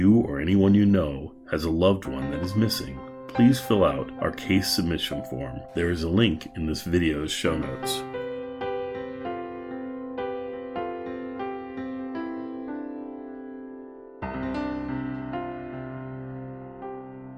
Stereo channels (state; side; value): identical; both; correlation 1.00